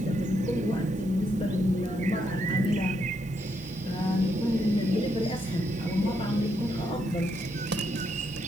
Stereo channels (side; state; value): both; normal; correlation 0.78